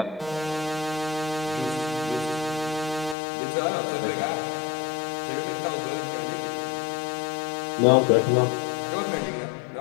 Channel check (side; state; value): right; drops out; at 3.2 s